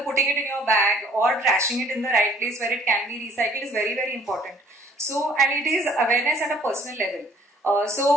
putting it in your bag or trashing it in the right place where it can be recycled is very, very important. So and it is awareness at a personal level. So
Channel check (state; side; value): normal; both; correlation 0.58